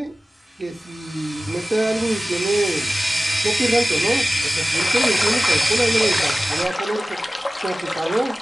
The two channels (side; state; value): both; normal; correlation 0.97